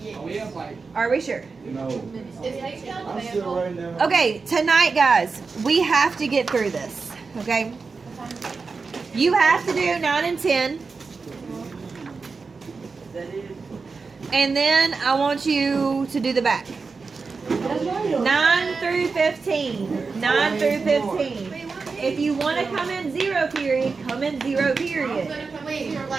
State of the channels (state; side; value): quieter; left; 4.6 dB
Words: Oh, we have like, Are we sure? No. Is H down I'm the still writing down. Okay, tonight, guys, we have to get through this. Okay. You have to do 9 and 10, and then I want you to do the back. 9 through 15. 9 through 15. If you want to come in 0 period, come in 0 period. Wait, you're